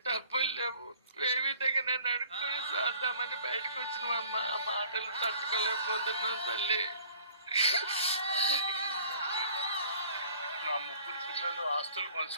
డబ్బులు లేవు. ఏ విధంగా నేను అడుక్కుని సాద్దామని బయటకు వచ్చినామమ్మా. ఆ మాటలు తట్టుకోలేకపోతున్నాం తల్లి. నా 3 పిల్లలు ఆస్తులు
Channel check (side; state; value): both; inverted; correlation -0.53